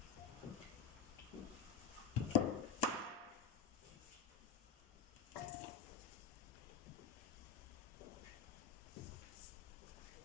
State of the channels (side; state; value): right; quieter; 6.4 dB